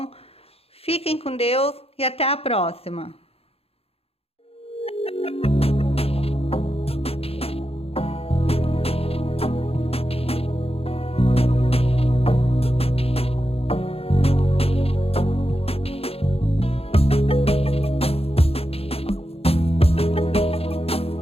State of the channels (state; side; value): late; right; 0.29 ms